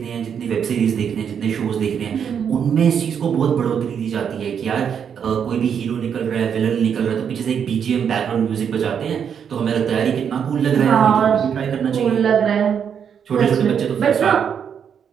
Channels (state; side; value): quieter; left; 7.7 dB